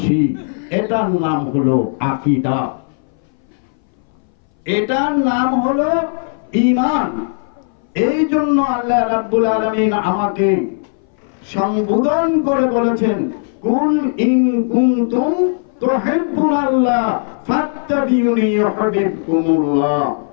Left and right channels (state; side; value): silent; right; 62 dB below the other